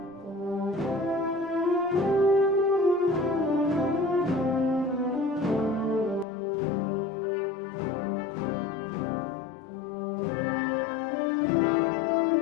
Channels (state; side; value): drops out; right; at 6.2 s